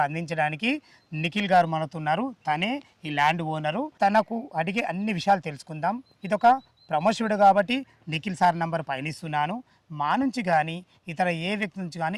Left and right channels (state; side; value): identical; both; correlation 1.00